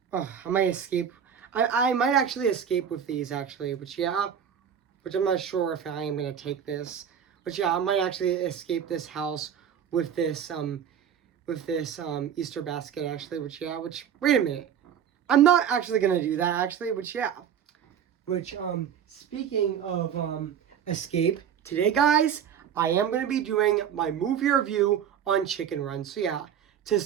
might escape. I might actually escape with these, actually, which I'm not sure if I am going to take this. But I might actually escape this house with this, Easter basket, actually, wait a minute. I'm not actually going to do that, actually, speaking of escape, today, guys, I am going to be doing my movie review on Chicken Run. So to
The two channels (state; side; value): quieter; left; 8.5 dB